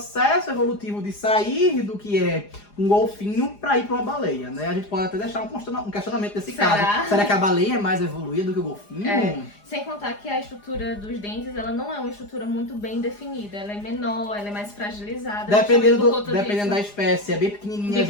evolutivo de sair do que é um golfinho para ir para uma baleia, né? A gente pode até deixar um questionamento nesse caso. Será que a baleia é mais evoluída do que o golfinho? Sem contar que a estrutura dos dentes, ela não é uma estrutura muito bem definida. Ela é menor, ela é mais fragilizada. Dependendo da espécie, é bem pequenininha,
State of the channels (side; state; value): right; late; 4.9 ms